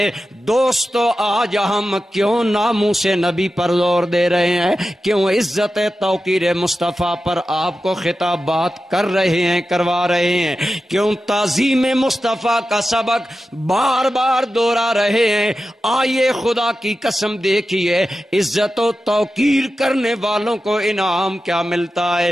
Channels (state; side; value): normal; both; correlation 0.92